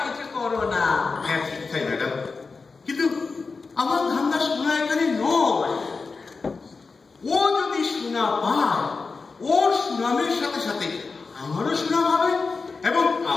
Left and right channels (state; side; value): quieter; right; 4.4 dB